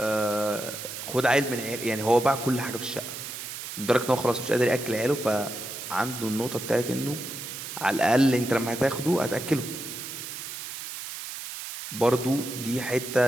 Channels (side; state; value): right; noise; hiss, 8 dB below the sound